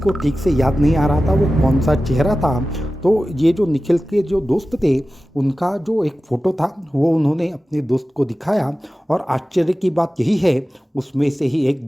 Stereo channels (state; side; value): normal; both; correlation 0.95